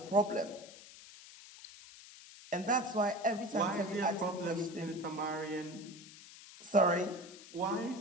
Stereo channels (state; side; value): noise; left; hiss, 18 dB below the sound